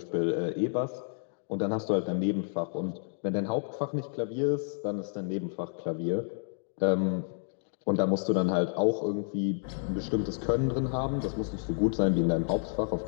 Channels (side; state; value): right; silent; digital silence